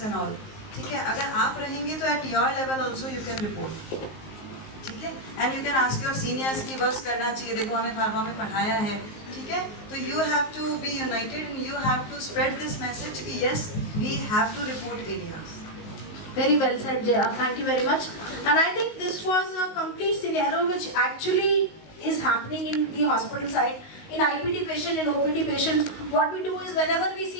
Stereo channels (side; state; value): right; late; 19 ms